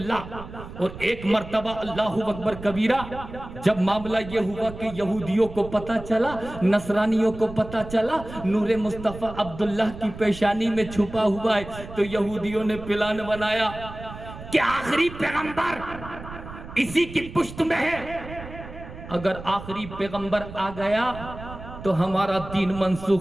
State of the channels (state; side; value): noise; right; rumble, 13 dB below the sound